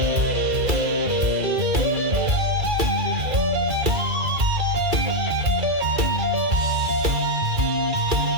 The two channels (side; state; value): left; late; 2.3 ms